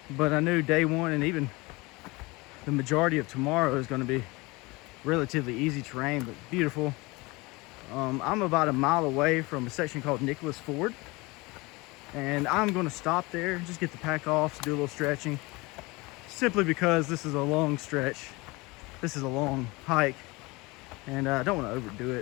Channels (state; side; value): quieter; right; 23.9 dB